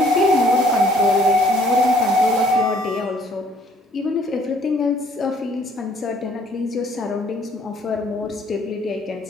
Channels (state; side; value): normal; both; correlation 0.61